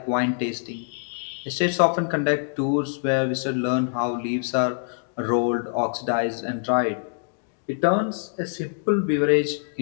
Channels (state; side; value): silent; right; digital silence